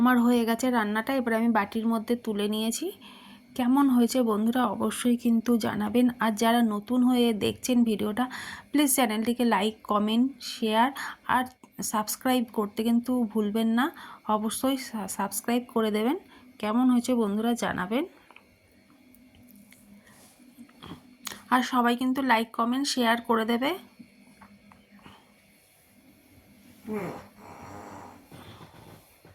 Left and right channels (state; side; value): identical; both; correlation 1.00